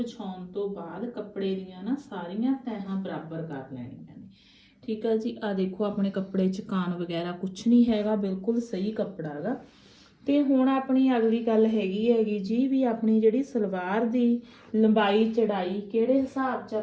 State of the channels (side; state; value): both; identical; correlation 1.00